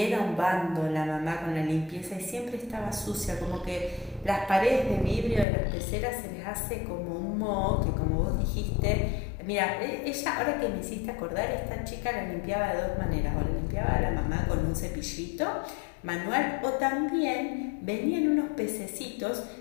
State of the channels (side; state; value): right; drops out; at 5.5 s